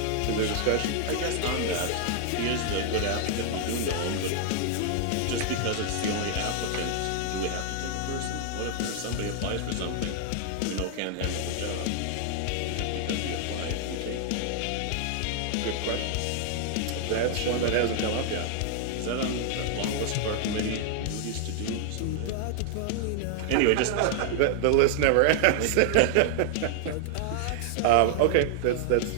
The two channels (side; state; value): both; different; correlation 0.00